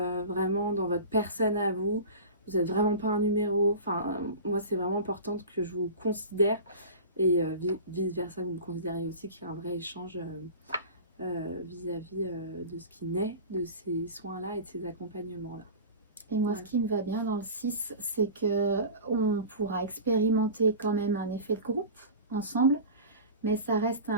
vraiment dans votre personne à vous. Vous n'êtes vraiment pas un numéro. Enfin, moi, c'est vraiment important que je vous considère et vice versa, vous me considérez aussi, qu'il y a un vrai échange vis-à-vis de ce qui naît de ces soins-là et de ces accompagnements-là. Et moi, ce qui me va bien dans le 6, c'est qu'on pourra expérimenter quand même un effet de groupe ensemble, mais ça reste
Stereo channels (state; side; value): inverted; both; correlation -0.34